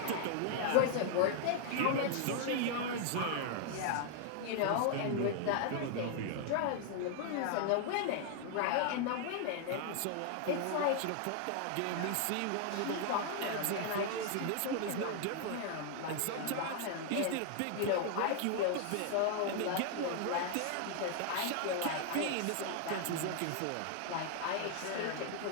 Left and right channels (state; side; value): different; both; correlation 0.00